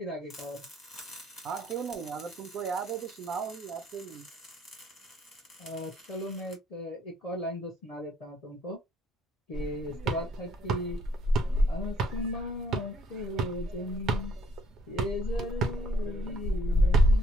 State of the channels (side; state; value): both; normal; correlation 0.65